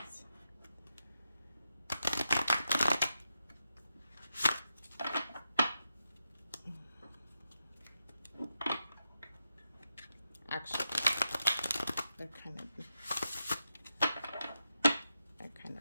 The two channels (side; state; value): both; inverted; correlation -0.87